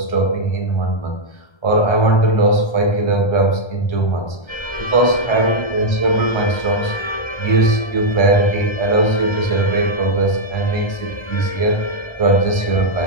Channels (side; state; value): right; late; 1.3 ms